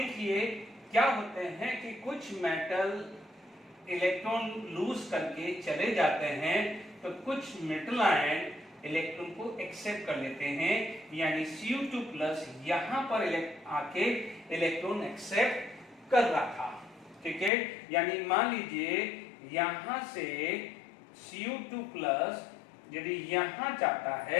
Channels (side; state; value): right; drops out; at 17.5 s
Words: क्या होते हैं कि कुछ मेटल इलेक्ट्रॉन लूज करके चले जाते हैं, तो कुछ मेटल आयन इलेक्ट्रॉन को एक्सेप्ट कर लेते हैं, यानी Cu2+ यहां पर आके इलेक्ट्रॉन एक्सेप्ट कर रहा था। ठीक है, यानी मान लीजिए यहां से Cu2 प्लस यदि यहां जाता